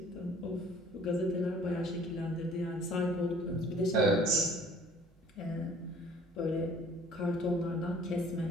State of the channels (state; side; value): normal; both; correlation 0.52